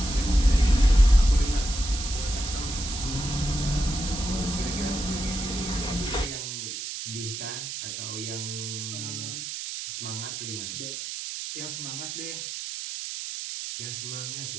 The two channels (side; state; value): right; noise; hiss, 6 dB below the sound